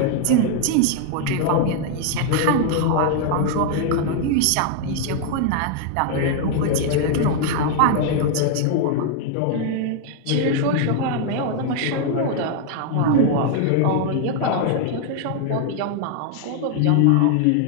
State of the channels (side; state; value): both; different; correlation 0.00